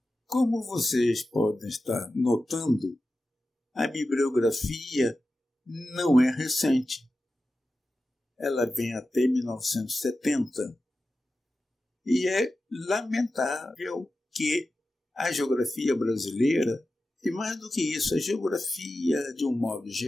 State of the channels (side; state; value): both; normal; correlation 0.93